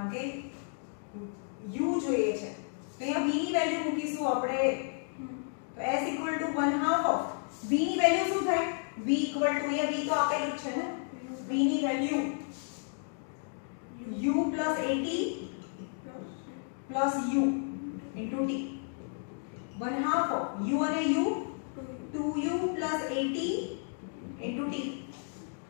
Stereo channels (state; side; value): silent; right; 56 dB below the other